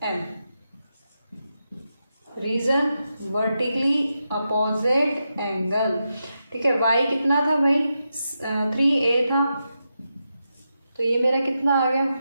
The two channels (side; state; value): both; inverted; correlation -0.87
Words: M. Reason, vertically opposite angle, ठीक है। वाई कितना था भाई, 3a था, तो ये मेरा कितना आ गया